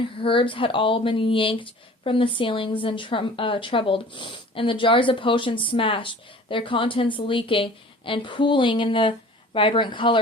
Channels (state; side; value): normal; both; correlation 0.46